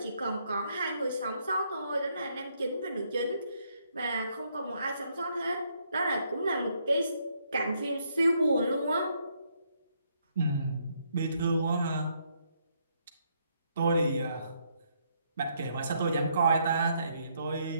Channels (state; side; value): inverted; both; correlation -0.73